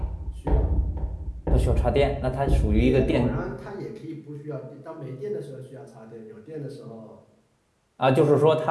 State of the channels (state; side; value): identical; both; correlation 1.00